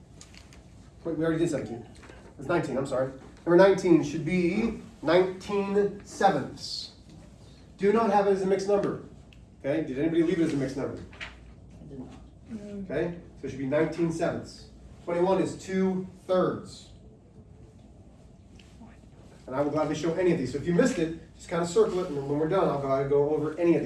Wait, we already did 17. It's 19, I'm sorry. Number 19 should be 19 sevenths. Do not have it as a mixed number. Okay, did anybody leave it as a mixed number? I did not. Okay, so it should be 19 sevenths. 21 is 2/3. And I will gladly show any of these. So if you missed it, just kind of circle it, and then when we're done, I'll go over any of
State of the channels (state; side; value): identical; both; correlation 1.00